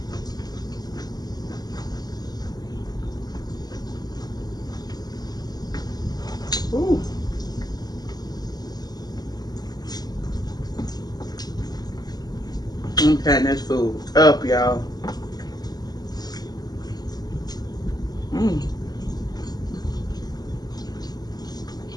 Ooh. I'm cutting this food up, y'all. Mm.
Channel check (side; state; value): right; late; 0.19 ms